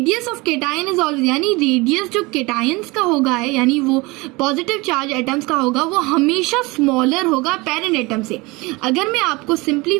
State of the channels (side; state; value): left; quieter; 24.2 dB